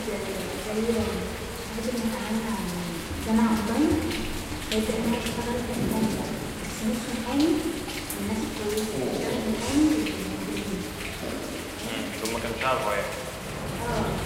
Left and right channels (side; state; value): both; identical; correlation 1.00